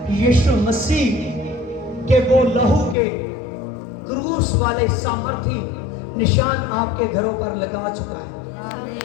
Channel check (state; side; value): drops out; right; at 3.0 s